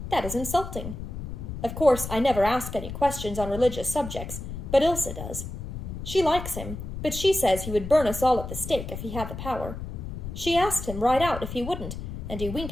That is insulting. Of course, I never ask any questions on religious subjects, but Ilsa does. She likes him, but she says he would burn us all at the stake if he had the power. She asked him right out if he wouldn't, and he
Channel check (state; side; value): noise; left; rumble, 8 dB below the sound